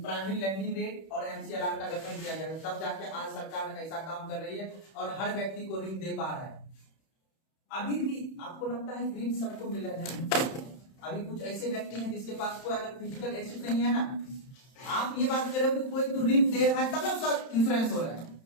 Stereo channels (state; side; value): late; right; 31 ms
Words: लैंडिंग रेट और MCLR का गठन किया गया, तब जाके आज सरकार ऐसा काम कर रही है और हर व्यक्ति को ऋण दे पा रहा है। अभी भी आपको लगता है ऋण सबको मिल रहा है? अभी कुछ ऐसे व्यक्ति हैं जिसके पास कोई अगर फिजिकल एसेट नहीं है ना, आप ये बात कर रहे हो कि कोई तो ऋण दे रहा है तब ना उसका इंश्योरेंस हो रहा है,